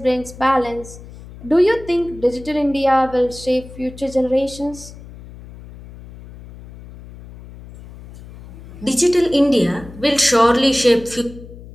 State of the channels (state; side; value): noise; left; hum, 17 dB below the sound